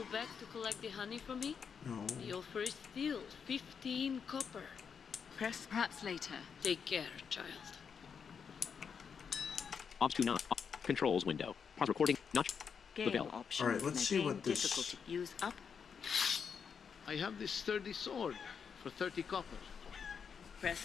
back to collect the honey for me? No. You'll first steal 15 copper. Press Perhaps later. Take care, child. Ops 29. Controls window. Pause recording. Not. game bell. options. Alright, let's see Game what this- difficulty. Use up. I have this sturdy sword for 30 copper.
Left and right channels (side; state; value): right; quieter; 6.6 dB